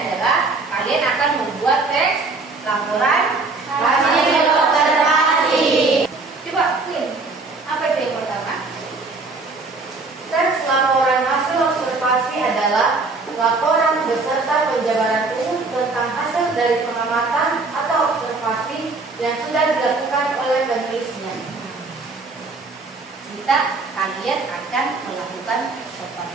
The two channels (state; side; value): quieter; left; 3.7 dB